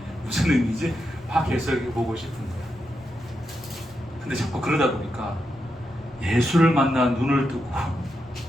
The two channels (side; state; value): both; normal; correlation 0.85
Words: 무슨 의미지? 막 해석해보고 싶은 거야. 근데 자꾸 그러다 보니까 예수를 만나 눈을 뜨고